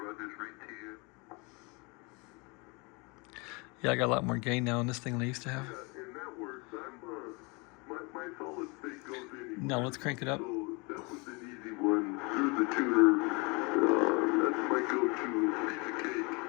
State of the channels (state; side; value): quieter; right; 29.1 dB